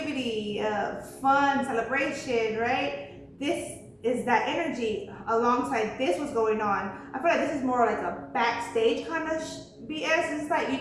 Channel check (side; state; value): both; identical; correlation 1.00